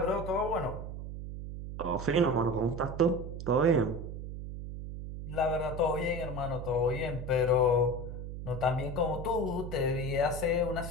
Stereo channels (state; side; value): noise; right; hum, 8 dB below the sound